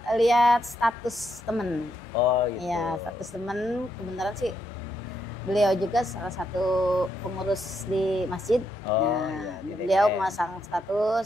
lihat status temen. Oh gitu. Ya, status temen kebenaran sih beliau juga salah satu pengurus di masjid. Oh, Nah, iya, di beliau DKM. memasang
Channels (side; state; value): both; normal; correlation 0.78